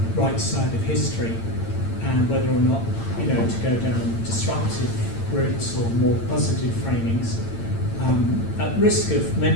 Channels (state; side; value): late; right; 8.9 ms